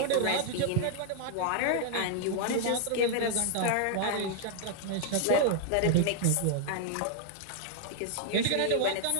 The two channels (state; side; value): different; both; correlation -0.01